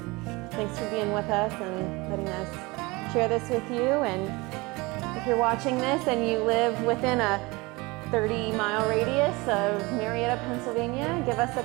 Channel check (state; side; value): quieter; left; 24.1 dB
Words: Thanks for being with us and letting us share this with you. And if you're watching this and you live within a 30-mile radius of Marietta, Pennsylvania, give us a